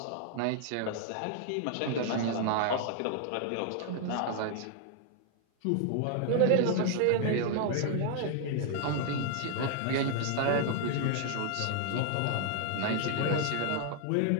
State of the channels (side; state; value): both; different; correlation 0.00